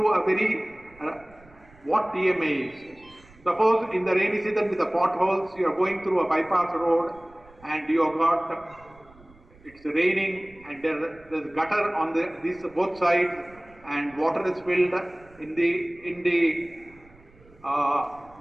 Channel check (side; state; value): right; noise; rumble, 26 dB below the sound